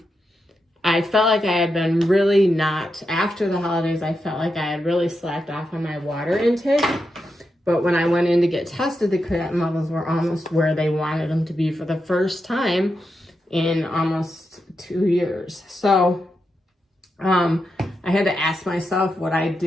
I felt like I had been really not, after the holidays, I felt like I had really slacked off on my water intake. But when I went in to get tested, the creatinine levels were almost where they wanted them to be for the first time in almost 2 years. So I had to ask myself what I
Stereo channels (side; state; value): both; normal; correlation 0.86